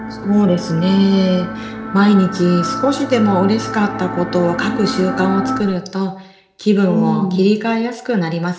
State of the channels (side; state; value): both; identical; correlation 1.00